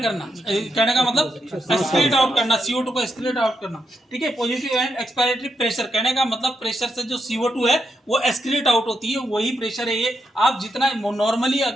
करना, कहने का मतलब एक्सक्रीट आउट करना, CO2 को एक्सक्रीट आउट करना, ठीक है। पॉजिटिव एंड एक्सपायरेटरी प्रेशर, कहने का मतलब प्रेशर से जो CO2 है वो एक्सक्रीट आउट होती है, वही प्रेशर है ये। आप जितना नॉर्मली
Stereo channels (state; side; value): normal; both; correlation 0.82